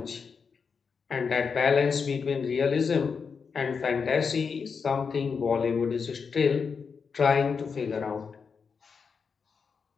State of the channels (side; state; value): right; quieter; 5.7 dB